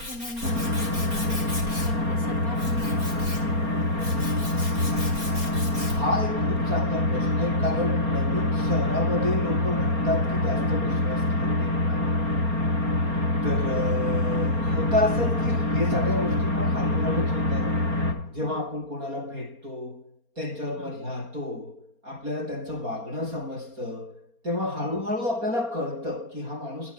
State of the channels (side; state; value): left; late; 4.3 ms